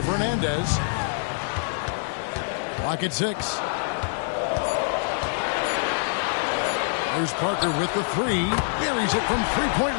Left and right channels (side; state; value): right; silent; 56 dB below the other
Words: Fernandez. Clock at 6. There's Parker with the three. Buries it from three-point